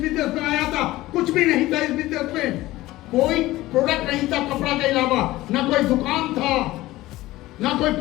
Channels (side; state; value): right; quieter; 17.4 dB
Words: बिजनेस में आया था, कुछ भी नहीं था इस बिजनेस में, कोई प्रोडक्ट नहीं था कपड़ा के अलावा, ना कोई दुकान था, ना कोई